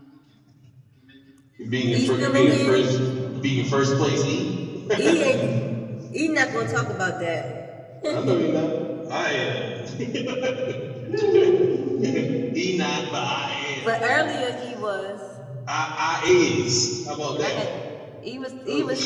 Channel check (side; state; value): both; identical; correlation 1.00